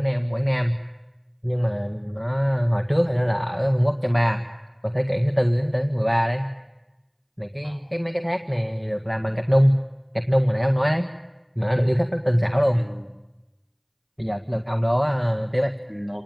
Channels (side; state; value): both; identical; correlation 1.00